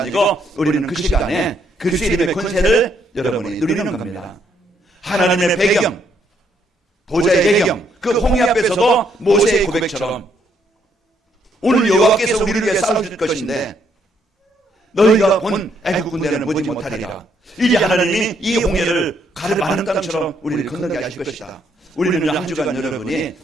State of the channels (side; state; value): both; normal; correlation 0.72